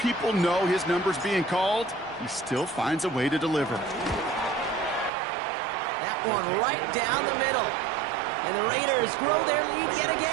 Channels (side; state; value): left; drops out; at 5.1 s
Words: know his number's being called, he still finds a way to deliver. That one right down the middle. And the Raiders grow their lead yet